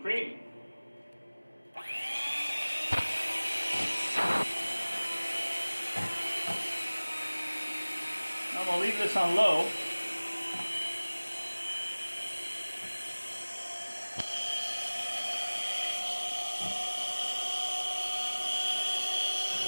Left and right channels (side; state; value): both; inverted; correlation -1.00